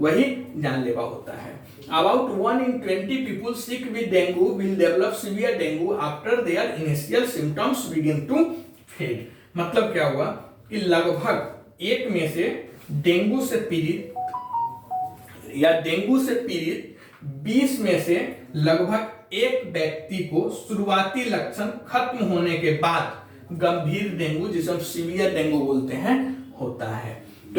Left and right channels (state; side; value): identical; both; correlation 1.00